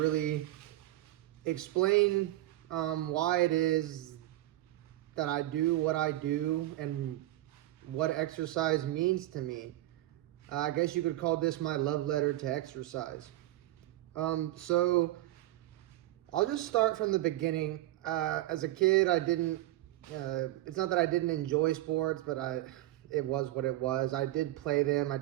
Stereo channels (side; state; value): left; quieter; 15.8 dB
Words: explain why it is that I do what I do and what exercise means to me. I guess you could call this my love letter to exercise. So I'll just start from the beginning. As a kid, I didn't, it's not that I didn't enjoy sports, but it was what it was. I did play them. I